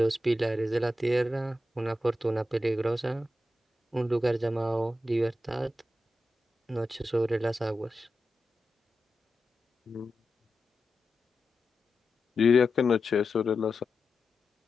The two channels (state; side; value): normal; both; correlation 0.90